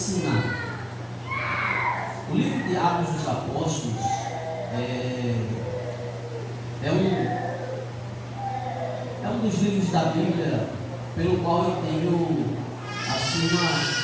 O livro de Atos dos Apóstolos é um dos livros da Bíblia pelo qual eu tenho assim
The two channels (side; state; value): both; identical; correlation 1.00